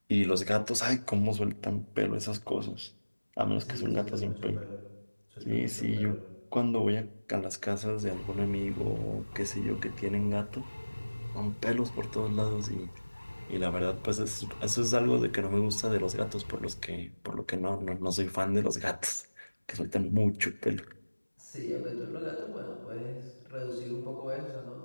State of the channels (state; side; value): inverted; both; correlation -1.00